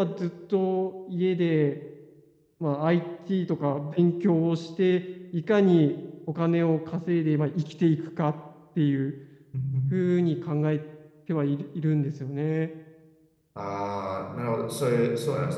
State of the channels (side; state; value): both; identical; correlation 1.00